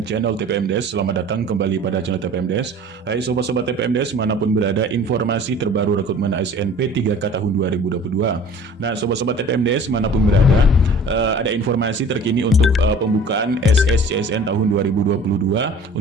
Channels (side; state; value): both; normal; correlation 0.46